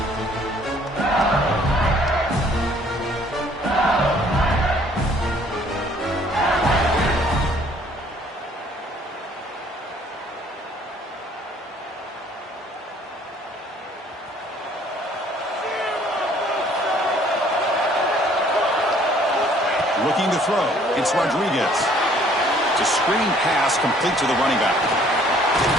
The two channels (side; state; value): both; normal; correlation 0.59